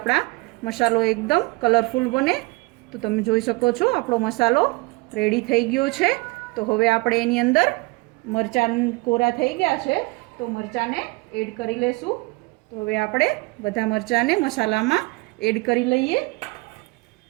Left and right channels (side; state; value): left; quieter; 25.6 dB